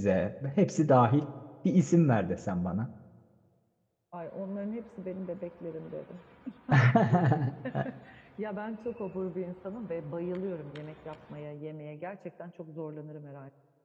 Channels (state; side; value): identical; both; correlation 1.00